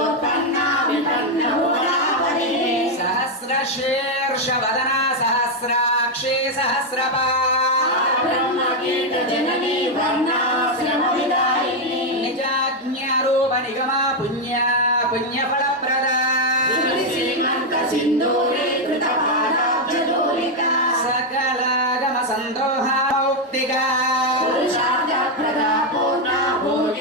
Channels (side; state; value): both; normal; correlation 0.02